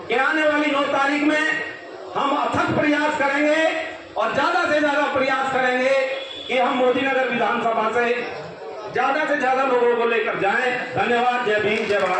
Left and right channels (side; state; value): both; identical; correlation 1.00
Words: कि आने वाली 9 तारीख में हम अथक प्रयास करेंगे और ज्यादा से ज्यादा प्रयास करेंगे कि हम मोदीनगर विधानसभा से ज्यादा लोगों को लेकर जाएं। धन्यवाद। जय भीम, जय